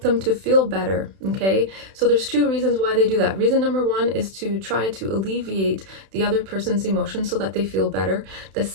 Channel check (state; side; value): late; left; 31 ms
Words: to feel better. Okay, so there's two reasons why they do that. Reason number one is to try to alleviate the other person's emotions so that they feel better. The